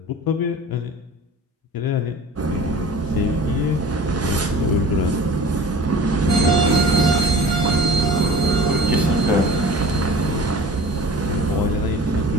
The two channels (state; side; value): normal; both; correlation 0.42